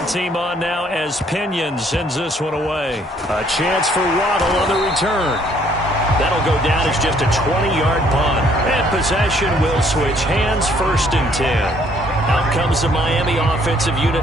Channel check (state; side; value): normal; both; correlation 0.64